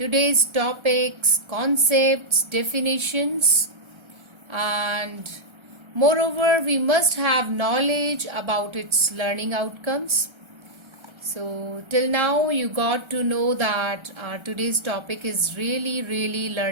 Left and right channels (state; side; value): late; left; 1.3 ms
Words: topics, concepts, definitions, and moreover, we must have knowledge about its learning outcomes. So, till now, you got to know that today's topic is really